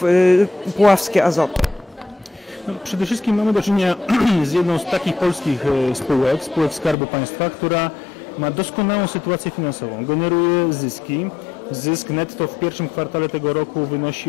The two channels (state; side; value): drops out; right; at 7.0 s